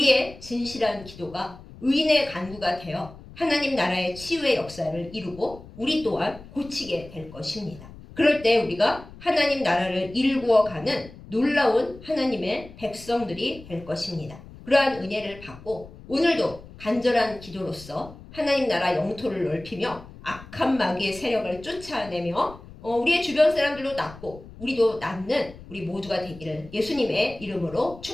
진실한 기도가 의인의 간구가 되어 하나님 나라의 치유의 역사를 이루고 우리 또한 고치게 될 것입니다. 그럴 때 우리가 하나님 나라를 일구어가는 놀라운 하나님의 백성들이 될 것입니다. 그러한 은혜를 받고 오늘도 간절한 기도로서 하나님 나라 영토를 넓히며 악한 마귀의 세력을 쫓아내며 우리의 주변 사람들도 낫고 우리도 낫는 우리 모두가 되기를 예수님의 이름으로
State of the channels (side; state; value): left; noise; rumble, 18 dB below the sound